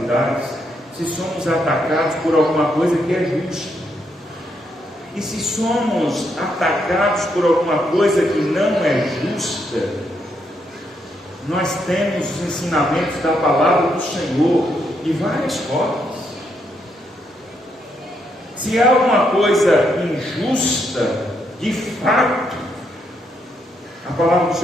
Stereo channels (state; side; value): normal; both; correlation 0.77